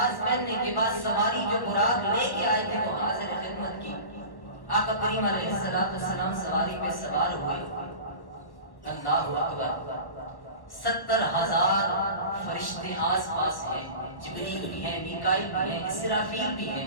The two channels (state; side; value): late; right; 1.1 ms